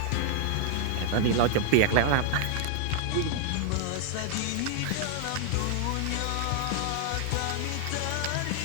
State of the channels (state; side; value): different; both; correlation 0.00